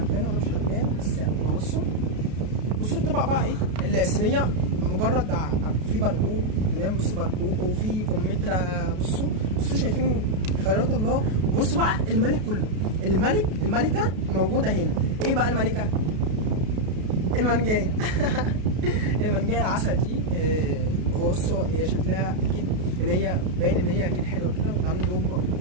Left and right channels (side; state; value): left; late; 33 ms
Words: ولا مش هتبان، بس يعني بصوا الطبق بقى ايه، الصينيه مجرد في برقوق، تمام. بصوا برقوق وفي كمثرى. بصوا شايفين خيرات الله. بصوا بقى الملك كله، الملكه موجوده هنا. ايه بقى الملكه؟ المنجايه المنجايه العسل دي. بصوا هي شكلها اكيد ان هي باين ان هي اكيد حلوه كده.